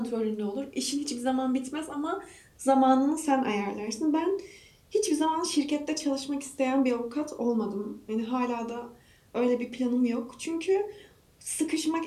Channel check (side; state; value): both; identical; correlation 1.00